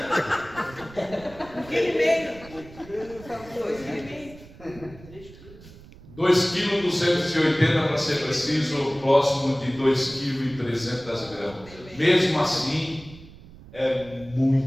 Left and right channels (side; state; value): right; noise; rumble, 20 dB below the sound